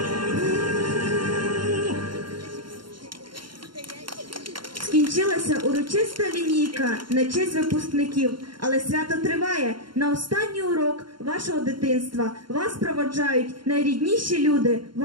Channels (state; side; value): late; left; 0.72 ms